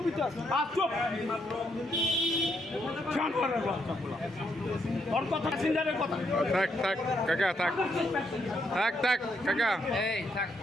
তো আছি। ওর কথা প্যাসেঞ্জারের কথা। থাক থাক কাকা থাক থাক থাক কাকা এই থাক,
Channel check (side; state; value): both; normal; correlation 0.76